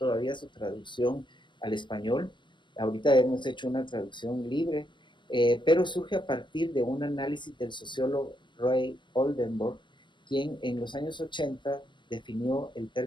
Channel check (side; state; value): right; late; 0.22 ms